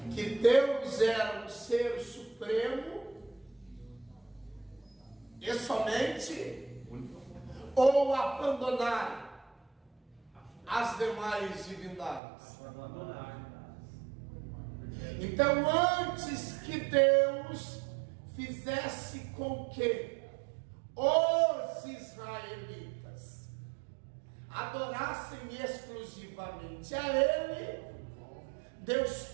que Deus era um ser supremo e somente, ou abandonar as demais divindades. Então, antes que Deus fizesse com que os israelitas adorassem exclusivamente a Ele, Deus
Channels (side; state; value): left; drops out; at 12.2 s